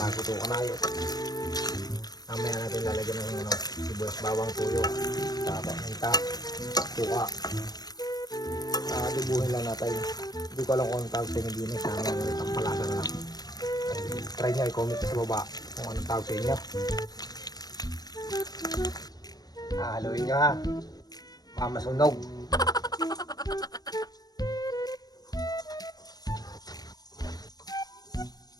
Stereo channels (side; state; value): right; late; 0.19 ms